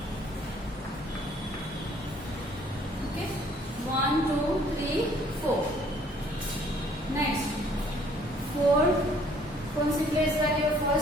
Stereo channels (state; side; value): normal; both; correlation 0.60